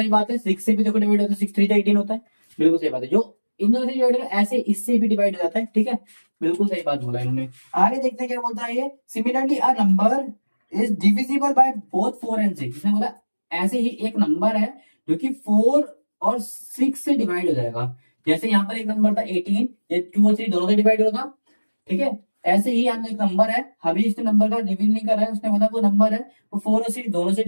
बात है, 6 से भी देखो डिवाइड होता है, 6 3 जा 18 होता है, बिल्कुल सही बात है। जो इन दोनों से डिवाइड होता है ऐसे इससे भी डिवाइड हो जाता है। ठीक है, बिल्कुल सही बात बोला इन्होंने। आगे देखते हैं क्या बोलता है ये। Similarly a number is divisible by both 4 and 6। इसने बोला ऐसे ही एक नंबर है जो कि 4 और 6 से डिवाइड हो जाएगा। जैसे यहाँ पर एक नंबर था 18, ये 2 और 3 दोनों से डिवाइड होगा, ठीक है। ऐसे ही यहाँ एक नंबर है, अभी इस नंबर का रिवील नहीं कर रहा है, उसने बोला वो नंबर है वो 4 और 6 दोनों से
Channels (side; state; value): both; inverted; correlation -1.00